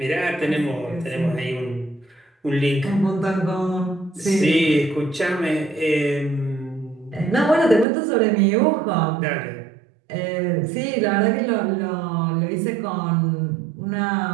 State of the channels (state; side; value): drops out; left; at 7.9 s